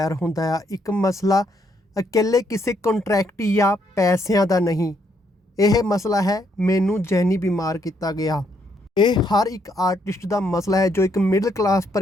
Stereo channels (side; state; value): both; normal; correlation 0.73